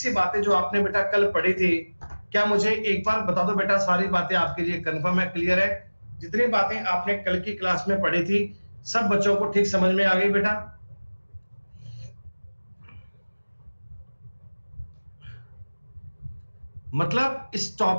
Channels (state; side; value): inverted; both; correlation -1.00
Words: बातें जो आपने बेटा कल पढ़ी थी, क्या मुझे एक बार बता दो बेटा, सारी बातें आपके लिए कंफर्म है, क्लियर है? जितनी बातें आपने कल की क्लास में पढ़ी थी सब बच्चों को ठीक समझ में आ गई बेटा? मतलब इस